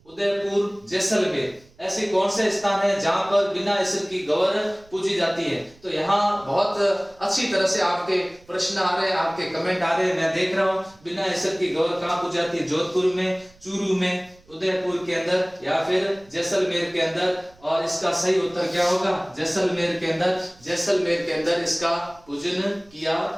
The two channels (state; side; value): noise; right; rumble, 28 dB below the sound